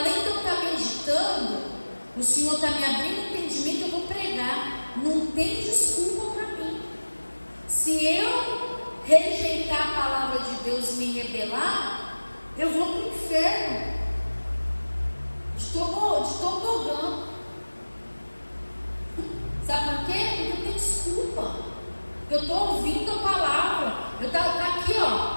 de eu estar meditando, o Senhor está me abrindo entendimento, eu vou pregar. Não tem desculpa para mim. Se eu rejeitar a palavra de Deus e me rebelar, eu vou para o inferno de tobogã. Sabe por quê? Porque não tem desculpa. Eu estou ouvindo a palavra, eu estou aqui,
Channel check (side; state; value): both; inverted; correlation -1.00